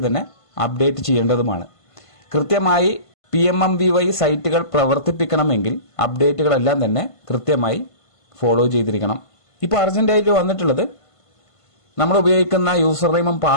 തന്നെ അപ്ഡേറ്റ് ചെയ്യേണ്ടതുമാണ്. കൃത്യമായി PMMBY സൈറ്റുകൾ പ്രവർത്തിപ്പിക്കണമെങ്കിൽ അപ്ഡേറ്റുകളെല്ലാം തന്നെ കൃത്യമായി ഫോളോ ചെയ്തിരിക്കണം. ഇപ്പോൾ അർജന്റായിട്ട് വന്നിട്ടുള്ളത് നമ്മൾ ഉപയോഗിക്കുന്ന യൂസർ നെയിമും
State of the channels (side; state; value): right; late; 1.5 ms